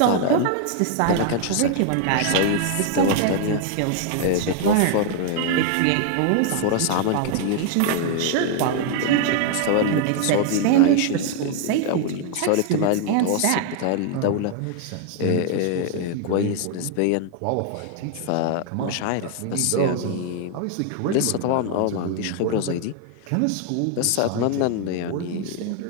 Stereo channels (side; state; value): both; different; correlation 0.00